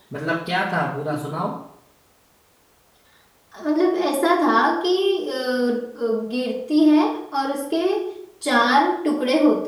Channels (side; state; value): both; identical; correlation 1.00